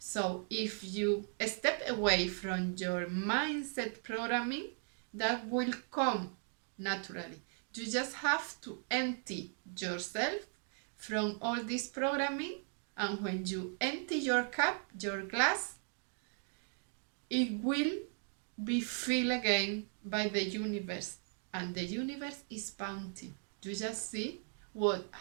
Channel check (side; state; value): left; silent; 53 dB below the other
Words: if you step away from your mindset programming, that will come naturally. You just have to empty yourself from all this programming, and when you empty your cup, your glass, it will be filled again by the universe, and the universe is bounty. You just see what